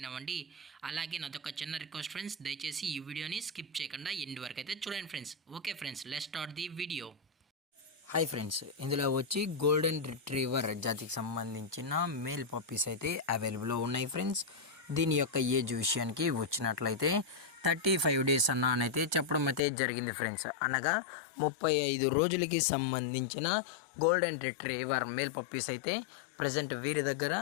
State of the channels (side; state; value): right; drops out; at 19.6 s